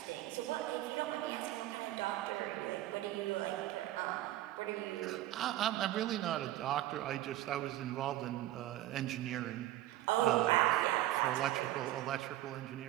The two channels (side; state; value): left; quieter; 14.9 dB